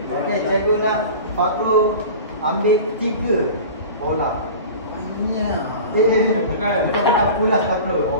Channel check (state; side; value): inverted; both; correlation -0.36